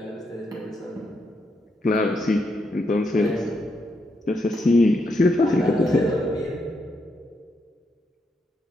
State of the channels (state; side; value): normal; both; correlation 0.80